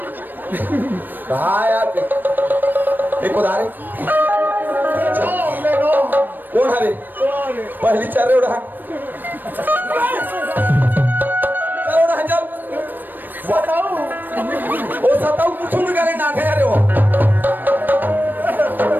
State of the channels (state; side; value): late; left; 0.091 ms